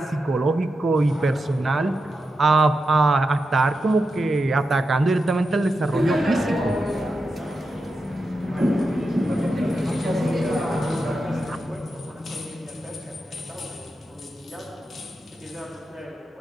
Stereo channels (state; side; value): normal; both; correlation 0.88